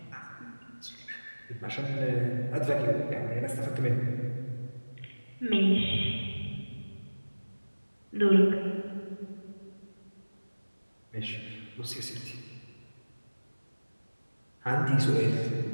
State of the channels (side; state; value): both; inverted; correlation -1.00